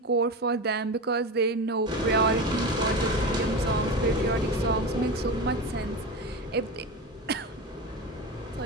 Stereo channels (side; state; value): both; normal; correlation 0.23